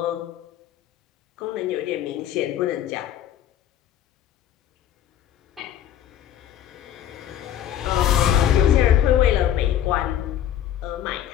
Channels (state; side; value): quieter; right; 10.8 dB